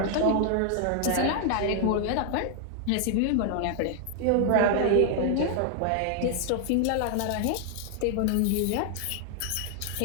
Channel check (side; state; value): both; different; correlation 0.00